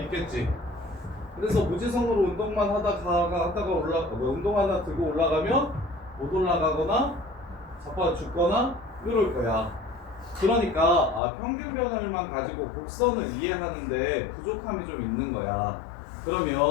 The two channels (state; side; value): drops out; right; at 11.2 s